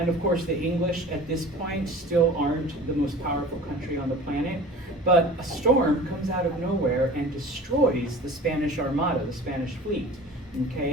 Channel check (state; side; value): normal; both; correlation 0.40